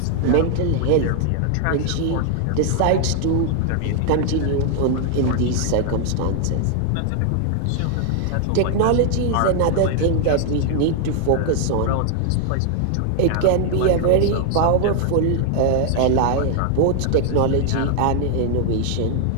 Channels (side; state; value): both; different; correlation 0.00